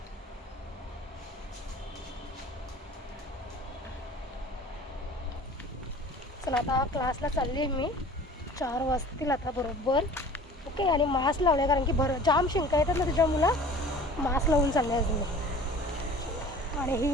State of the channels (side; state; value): both; normal; correlation 0.45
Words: चला, आता क्लासला चालली आहे मी. 4 वाजतील आता बरोबर. ओके. आणि मास्क लावले कारण की जाम शिंका येतात ना तुझ्या मुला. मास्क लावून चालले आहे तुम्ही. आणि